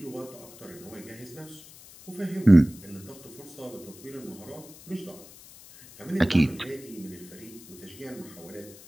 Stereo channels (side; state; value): left; noise; hiss, 19 dB below the sound